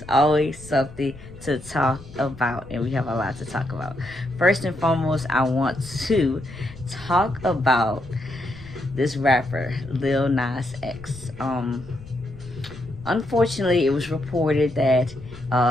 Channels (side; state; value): left; noise; rumble, 19 dB below the sound